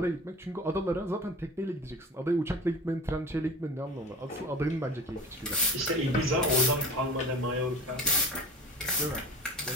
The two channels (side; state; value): both; normal; correlation 0.36